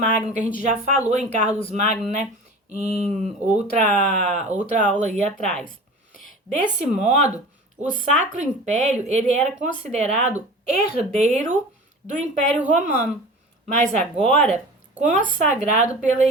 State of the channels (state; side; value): normal; both; correlation 0.37